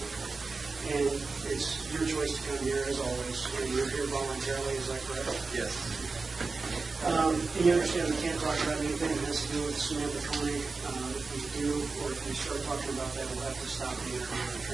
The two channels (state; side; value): quieter; left; 4.1 dB